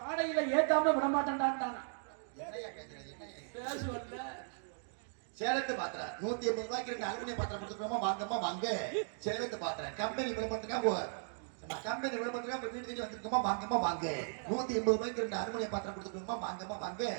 பாடையில ஏத்தாம விட மாட்டேன்டான். பேசுவல்ல சேலத்து பாத்திரம் 180 ரூபாய்க்கு 2 அலுமினியம் பாத்திரம் கொடுத்துக்கோமா, வாங்கம்மா வாங்க. சேலத்து பாத்திரம் கம்பெனி விளம்பரத்துக்கா கம்பெனி விளம்பரத்துக்கா வீட்டு தேடி வந்திருக்கோமா, வாங்கம்மா வாங்க. 180 ரூபாய்க்கு 2 அலுமினியம் பாத்திரம் கொடுத்துக்கோமா, வாங்கம்மா வாங்க.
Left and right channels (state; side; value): silent; left; digital silence